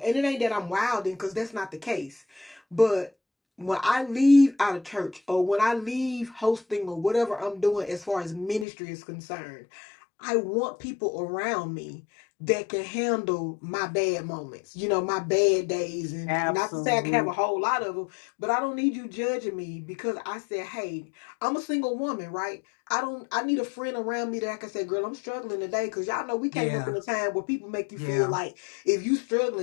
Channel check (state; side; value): drops out; right; at 8.7 s